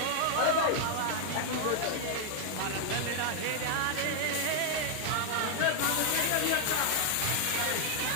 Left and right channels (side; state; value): both; different; correlation 0.00